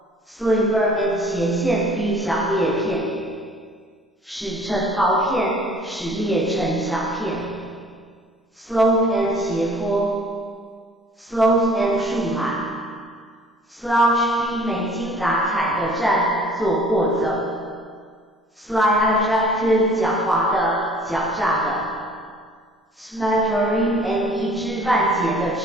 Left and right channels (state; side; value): normal; both; correlation 0.51